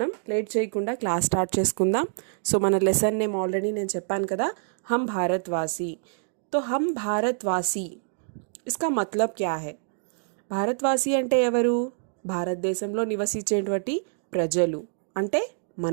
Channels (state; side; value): silent; left; digital silence